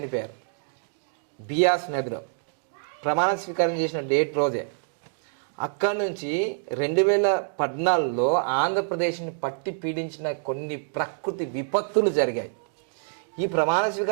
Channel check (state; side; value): silent; left; digital silence